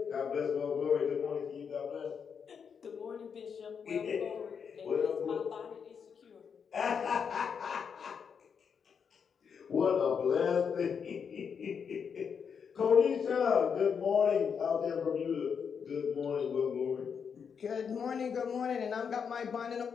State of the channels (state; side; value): quieter; right; 6.7 dB